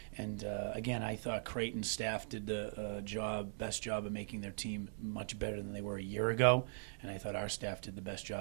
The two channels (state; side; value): silent; left; digital silence